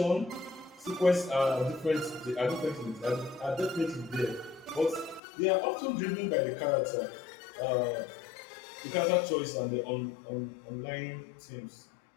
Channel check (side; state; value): right; drops out; at 5.2 s